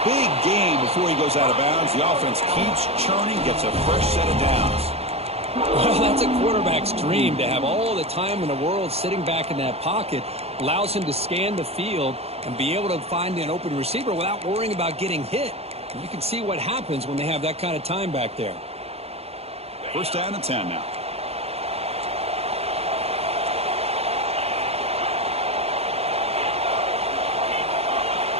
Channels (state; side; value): late; left; 0.29 ms